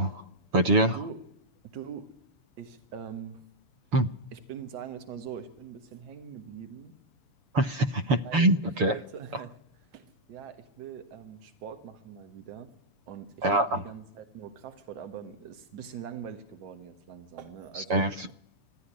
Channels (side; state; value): left; late; 7.0 ms